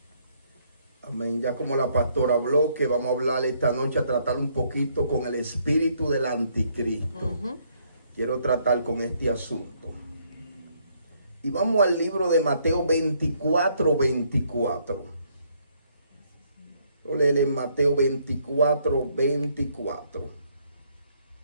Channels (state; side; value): inverted; both; correlation -0.69